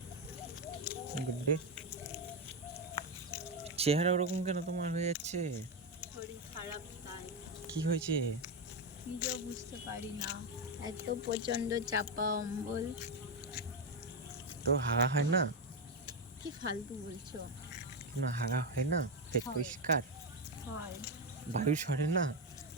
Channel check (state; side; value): normal; both; correlation 0.08